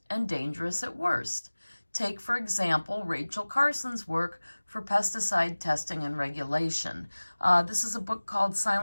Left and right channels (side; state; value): both; inverted; correlation -1.00